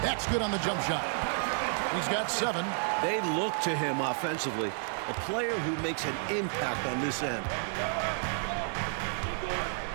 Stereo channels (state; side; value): silent; left; 57 dB below the other